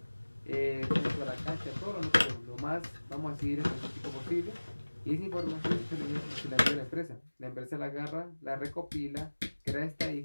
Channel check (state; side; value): inverted; both; correlation -1.00